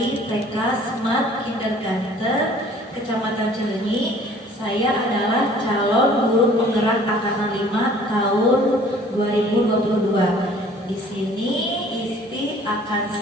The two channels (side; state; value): both; normal; correlation 0.53